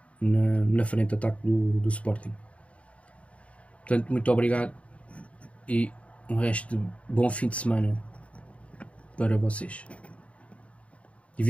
na frente de ataque do Sporting. Portanto, muito obrigado e um resto de bom fim de semana para vocês. E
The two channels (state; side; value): late; right; 0.064 ms